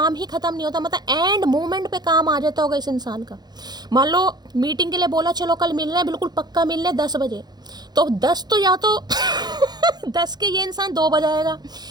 ही खत्म नहीं होता। मतलब एंड मोमेंट पे काम आ जाता होगा इस इंसान का। मान लो मीटिंग के लिए बोला, चलो कल मिल रहे हैं, बिल्कुल पक्का मिल रहे 10 बजे, तो 10 तो या तो 10 के ये इंसान 2 बजाएगा,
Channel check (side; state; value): left; late; 0.20 ms